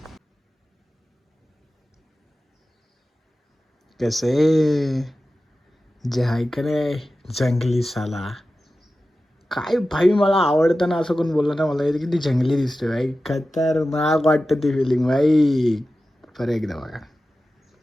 कसे जे आहे का रे जंगली साला, काय भाई मला आवडतं ना, असं कोण बोललं ना मला येतं किती जंगली दिसतोय भाई, खतरनाक वाटतं ती फिलिंग भाई. बरं एकदा बघा.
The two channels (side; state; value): both; normal; correlation 0.94